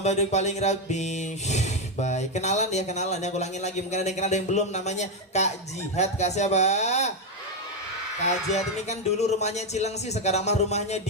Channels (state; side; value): normal; both; correlation 0.05